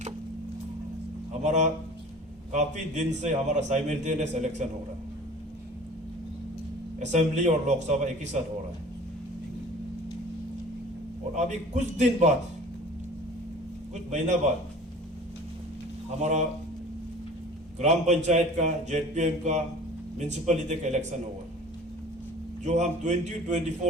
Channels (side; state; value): both; normal; correlation 0.44